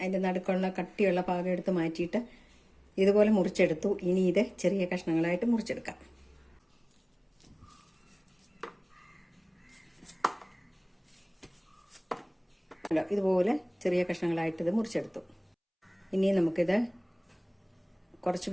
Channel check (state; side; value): identical; both; correlation 1.00